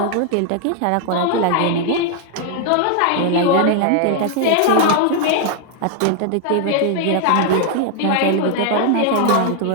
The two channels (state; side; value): different; both; correlation 0.00